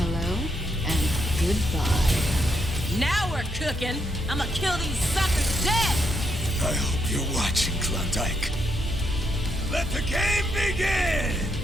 and goodbye. Now we're cooking. I'ma kill these suckers dead. I hope you're watching, Klondike. Let the game begin!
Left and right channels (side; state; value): both; normal; correlation 0.78